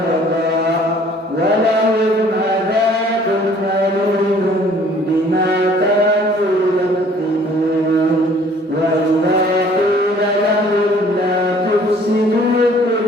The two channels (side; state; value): both; normal; correlation 0.56